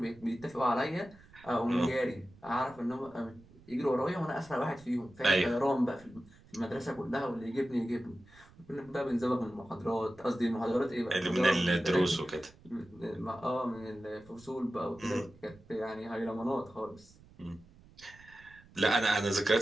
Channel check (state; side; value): noise; right; rumble, 25 dB below the sound